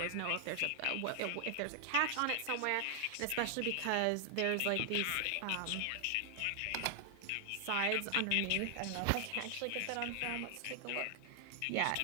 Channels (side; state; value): both; different; correlation 0.00